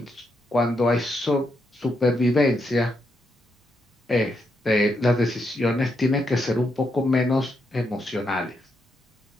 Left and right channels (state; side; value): normal; both; correlation 0.81